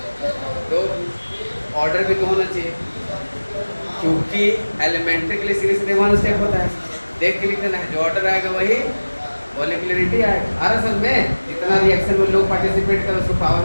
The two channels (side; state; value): both; inverted; correlation -1.00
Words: 2, ऑर्डर भी 2 होना चाहिए क्योंकि एलिमेंट्री के लिए सीधे सीधे 1 स्टेप होता है। देख के लिखना है, जो ऑर्डर आएगा वही मॉलिक्यूलरिटी आएगा। और असल में जितना रिएक्शन में लोग पार्टिसिपेट करें उसको पावर